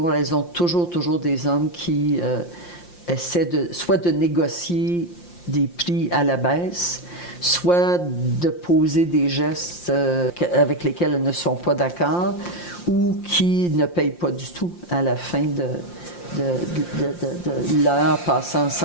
ont toujours des hommes qui essaient soit de négocier des prix à la baisse, soit de poser des gestes avec lesquels elles ne sont pas d'accord, ou qui ne payent pas du tout à la fin de l'heure passée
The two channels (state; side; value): late; right; 5.7 ms